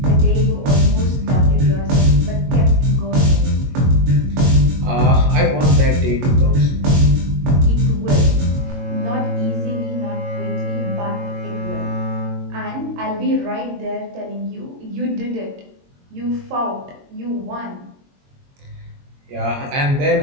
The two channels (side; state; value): left; late; 22 ms